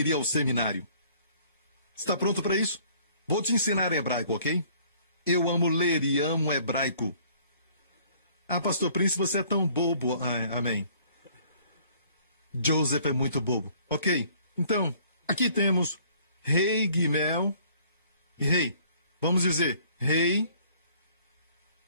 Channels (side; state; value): both; inverted; correlation -0.57